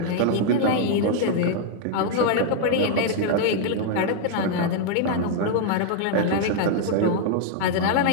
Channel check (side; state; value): both; different; correlation -0.01